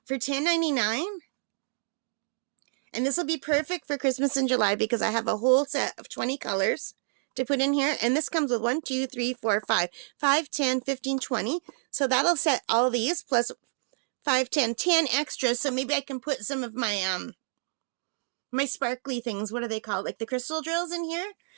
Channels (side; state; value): left; silent; digital silence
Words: For $10.99. And this will be perfect for Christmas in July because I have a whole set of 20 colors to put in here. And this comes with 1, 2, 3, 4, 5. 5, 10, 15, 20. So that'll set all these plus 5, 10 extras. So maybe I can put some of my my sparkly things. What are they called? Like the crystal drills in here.